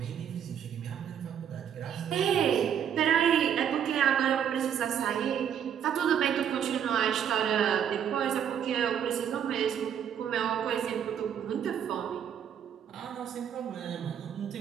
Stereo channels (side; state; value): left; quieter; 8.8 dB